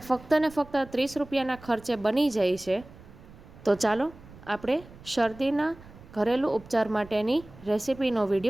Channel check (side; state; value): right; noise; rumble, 20 dB below the sound